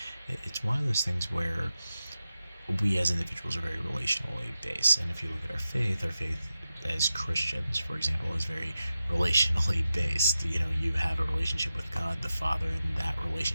it's one of those things where we as individuals are very relationally based. And if you look at our faith as Christians, for example, is very relationally based. You know, you have a relationship with God the Father, and that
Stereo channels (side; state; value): both; inverted; correlation -0.91